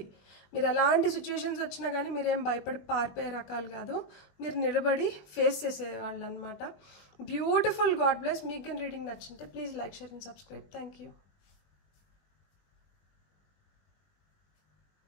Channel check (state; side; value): late; right; 20 ms